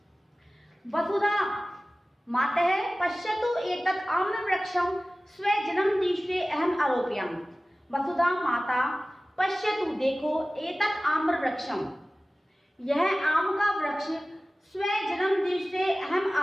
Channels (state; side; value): normal; both; correlation 0.97